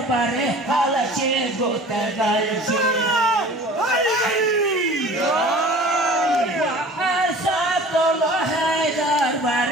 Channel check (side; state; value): both; normal; correlation 0.44